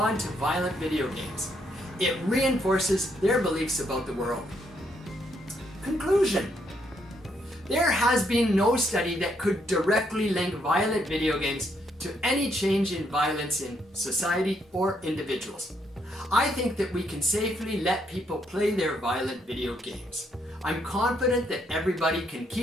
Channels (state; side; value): normal; both; correlation 0.74